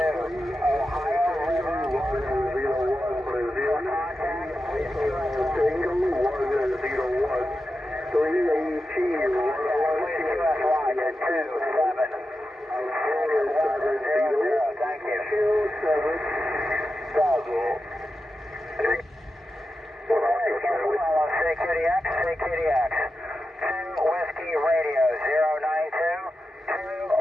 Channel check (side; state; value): both; normal; correlation 0.91